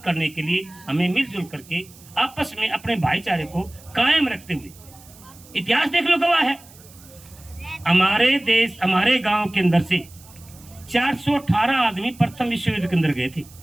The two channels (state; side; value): noise; right; hiss, 23 dB below the sound